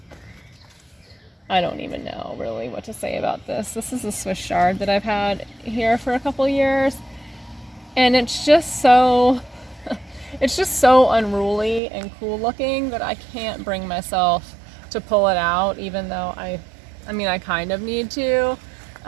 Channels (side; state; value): left; drops out; at 11.8 s